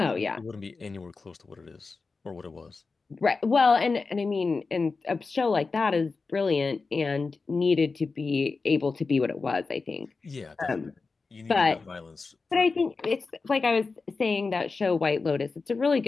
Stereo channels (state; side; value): quieter; right; 4.2 dB